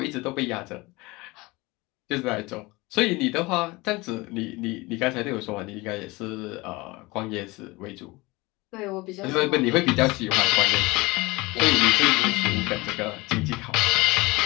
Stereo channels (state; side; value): quieter; right; 22.9 dB